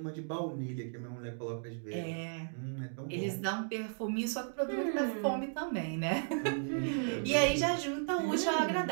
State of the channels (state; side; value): silent; left; digital silence